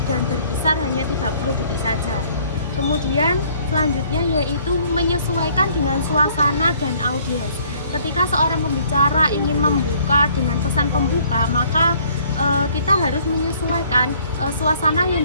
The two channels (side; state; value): both; inverted; correlation -0.60